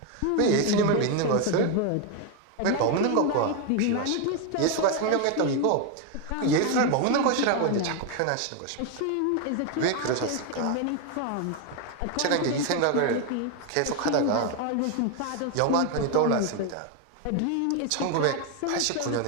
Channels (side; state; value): both; different; correlation 0.01